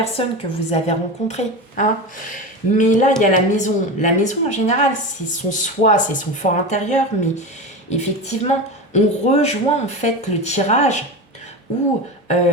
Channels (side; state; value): both; normal; correlation 0.24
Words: que vous avez rencontrée. Hein. Mais là, il y a la maison. La maison, en général, c'est son soi, c'est son fort intérieur. Mais effectivement, on rejoint en fait le tirage où